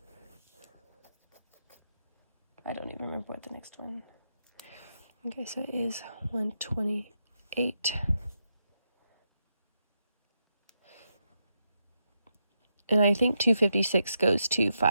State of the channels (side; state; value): both; inverted; correlation -0.84